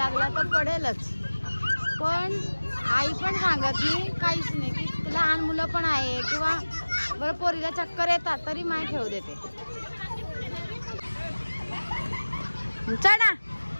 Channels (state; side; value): inverted; both; correlation -1.00